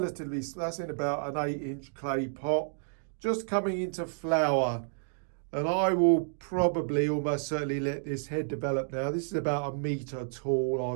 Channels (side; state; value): left; silent; digital silence